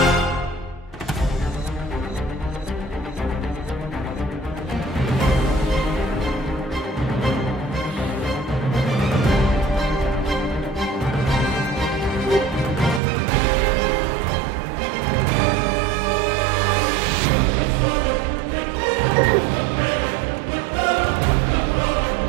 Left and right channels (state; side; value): drops out; left; at 13.0 s